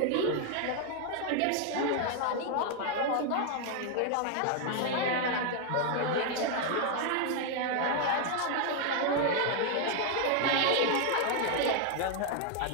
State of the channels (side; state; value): both; different; correlation 0.00